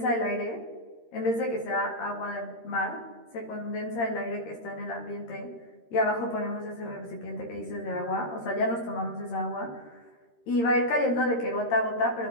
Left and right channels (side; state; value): right; late; 13 ms